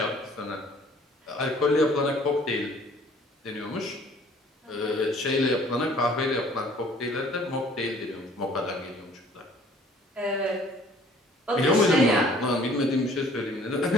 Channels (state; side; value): normal; both; correlation 0.55